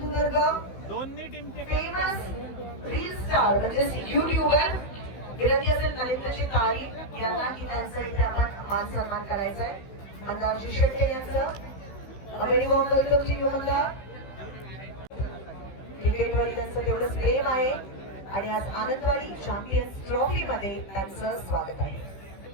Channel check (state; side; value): late; right; 15 ms